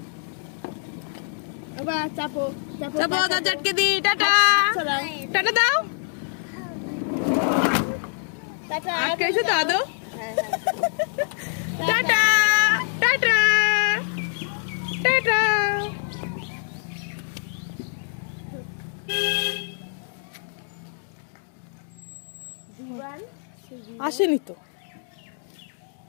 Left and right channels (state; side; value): silent; right; 62 dB below the other